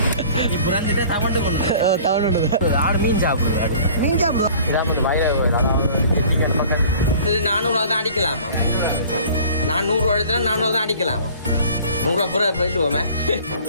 நீ புறந்துட்டே தமிழ்ட்டு கொண்டு தமிழ் ஆடு மீன் சாப்பிடுது. அது மீன் சாப்பிடுவோம். இதான் வந்து வயல அதாவது பக்கம் 400 தான் அடிக்கலாமா? நான் 100 எடுத்தா 400 தான் அடிக்கலாமா? 100 புற போயிடுவோமே.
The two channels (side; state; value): both; inverted; correlation -0.48